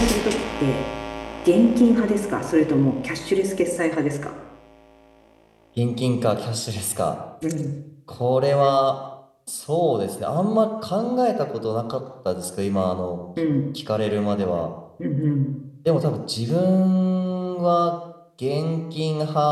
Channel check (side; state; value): both; identical; correlation 1.00